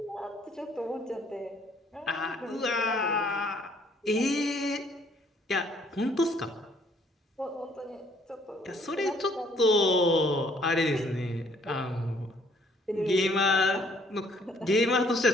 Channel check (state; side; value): normal; both; correlation 0.63